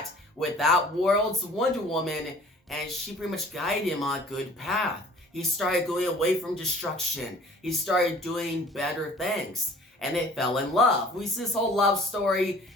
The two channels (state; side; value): normal; both; correlation 0.50